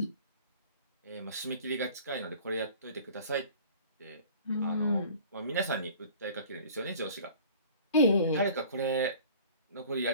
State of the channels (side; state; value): both; inverted; correlation -0.46